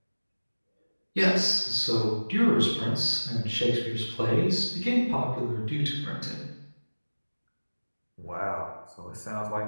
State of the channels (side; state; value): both; inverted; correlation -1.00